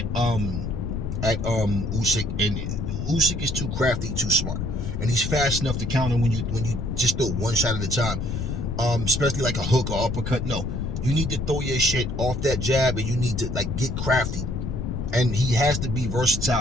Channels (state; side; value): noise; left; rumble, 3 dB below the sound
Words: Usyk, and Usyk is too crafty, too smart, and he's fast enough to counter when you just throw one shot at a time, especially like a hook or uppercut. No, you need to throw your shit off that jab, and you need to get crafty. And he has to be